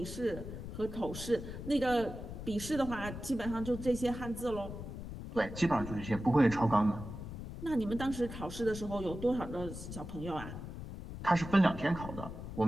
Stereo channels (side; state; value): left; noise; rumble, 9 dB below the sound